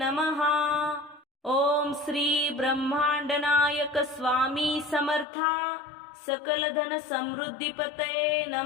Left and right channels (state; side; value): drops out; right; at 5.2 s